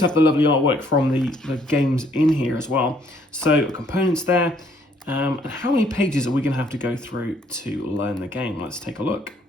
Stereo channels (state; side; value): normal; both; correlation 0.65